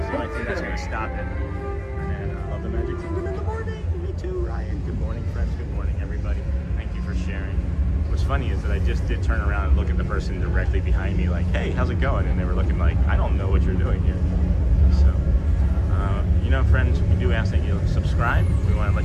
the only thing that's going to stop it. And I love the Magic Kingdom in the morning. Me too, Ryan. Good morning, friends. Good morning, everybody. Thank you for sharing. What's funny is that I just did turn around and look at the person directly behind me like, hey, how's it going? And they were looking like, I don't know what you're doing here. So, you know, friends, we do ask that you subscribe. We want to let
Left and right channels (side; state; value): both; identical; correlation 1.00